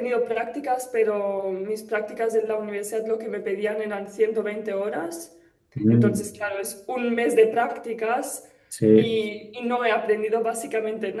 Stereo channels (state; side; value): identical; both; correlation 1.00